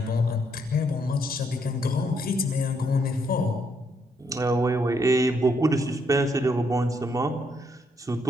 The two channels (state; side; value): normal; both; correlation 0.74